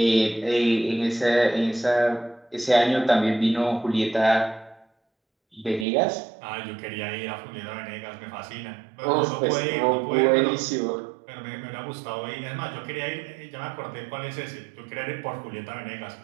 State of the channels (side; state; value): left; drops out; at 5.9 s